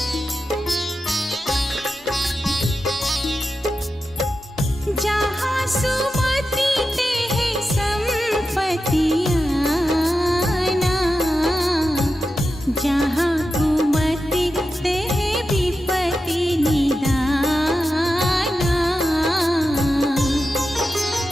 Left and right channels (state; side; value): normal; both; correlation 0.91